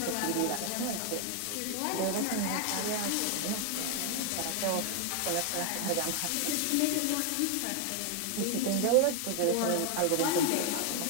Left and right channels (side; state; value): both; different; correlation 0.00